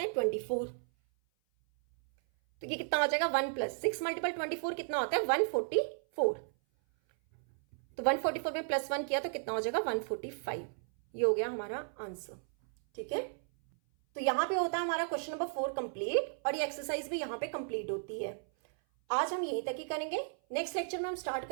है 24, तो ये कितना हो जाएगा 1 प्लस 6 मल्टीपल 24 कितना होता है 144, तो 144 में प्लस 1 किया तो कितना हो जाएगा 145। ये हो गया हमारा आंसर, ठीक है। तो यहां पे होता है हमारा क्वेश्चन नंबर 4 कंप्लीट, और ये एक्सरसाइज भी यहां पे कंप्लीट होती है। आज हम यहीं तक ही करेंगे, नेक्स्ट लेक्चर में हम स्टार्ट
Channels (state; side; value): silent; left; 55 dB below the other